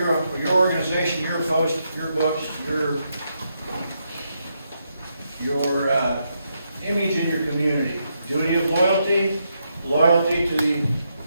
your organization, your post, your books, your image in your community. Duty of loyalty, loyalty to the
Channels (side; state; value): both; inverted; correlation -0.81